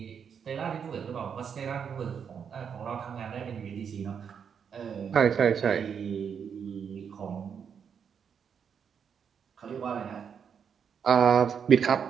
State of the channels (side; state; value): left; quieter; 7.2 dB